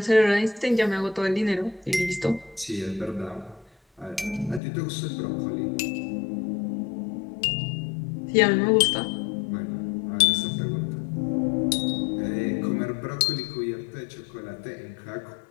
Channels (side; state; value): right; drops out; at 4.6 s